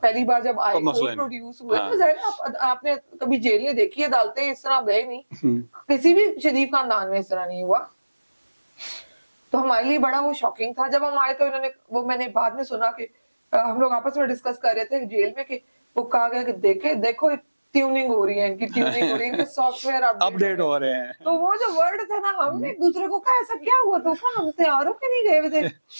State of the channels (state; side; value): inverted; both; correlation -1.00